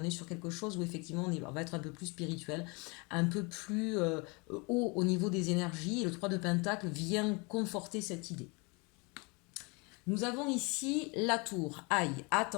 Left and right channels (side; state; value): right; quieter; 29.4 dB